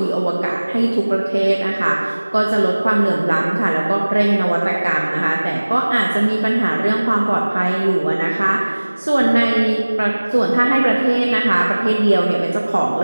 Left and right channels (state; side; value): inverted; both; correlation -1.00